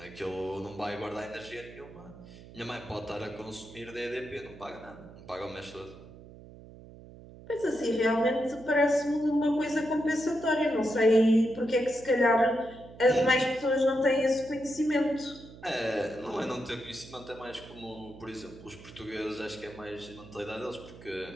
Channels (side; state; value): right; noise; hum, 18 dB below the sound